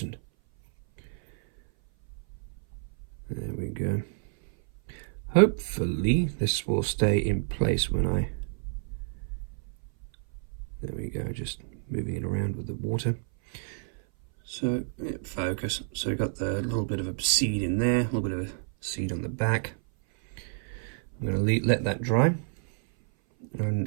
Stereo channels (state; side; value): silent; left; 57 dB below the other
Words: There we go. Hopefully this will stay in place when I... There we go, just moving it around with the water. So, yeah, focus. So we've got the little bit of a seed in there, a little bit of a seed on the back. I'm going to let that dry